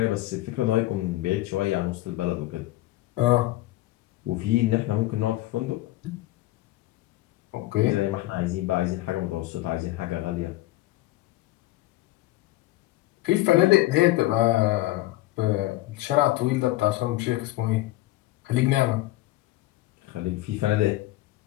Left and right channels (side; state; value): right; quieter; 17.0 dB